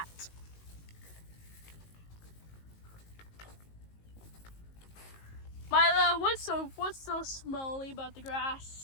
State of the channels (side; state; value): right; late; 19 ms